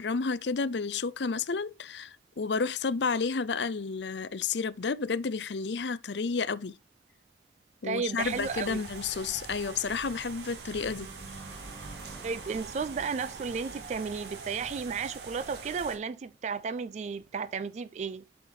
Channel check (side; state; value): both; normal; correlation 0.12